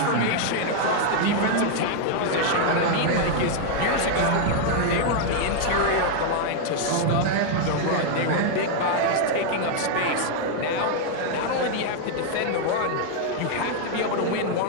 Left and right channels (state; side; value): different; both; correlation 0.00